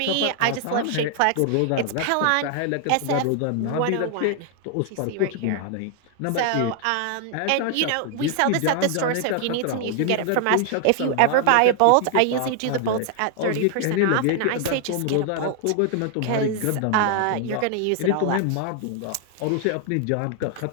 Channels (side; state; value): both; different; correlation 0.00